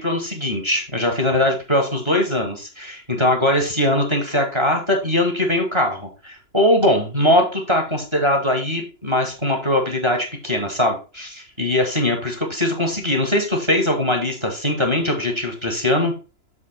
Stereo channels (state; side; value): late; left; 2.9 ms